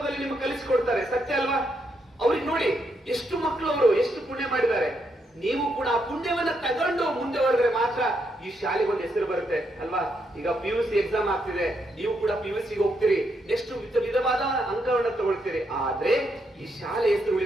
ನಿಮ್ಗೆ ಕಲಿಸಿಕೊಡ್ತಾರೆ, ಸತ್ಯ ಅಲ್ವಾ. ಅವ್ರಿಗೆ ನೋಡಿ ಎಷ್ಟು ಮಕ್ಕಳು, ಅವರು ಎಷ್ಟು ಪುಣ್ಯ ಮಾಡಿದ್ದಾರೆ. ನೀವು ಕೂಡ ಆ ಪುಣ್ಯವನ್ನ ತಗೊಂಡು ಮುಂದೆ ಹೊರದ್ರೆ ಮಾತ್ರ ಈ ಶಾಲೆಗೆ ಒಂದು ಹೆಸರು ಬರುತ್ತೆ ಅಲ್ವಾ. ಈಗ PUC ಎಕ್ಸಾಮ್ ಆಗ್ತಿದೆ, ನೀವು ಕೂಡ PUC ಹೋಗ್ತೀರಿ, ಎಷ್ಟು ವಿಧವಾದ ಅಂಕಗಳನ್ನ ತಗೊಳ್ತೀರಿ. ಆದ್ರೆ ಈ ಶಾಲೆ ಹೆಸರು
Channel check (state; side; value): normal; both; correlation 0.79